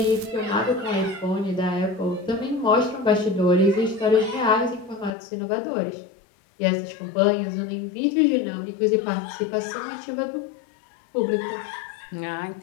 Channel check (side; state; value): right; drops out; at 5.1 s